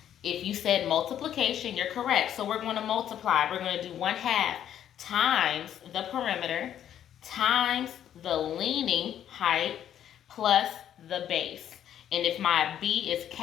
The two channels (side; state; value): right; quieter; 10.4 dB